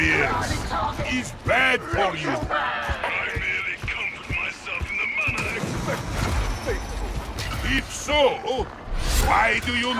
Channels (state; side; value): identical; both; correlation 1.00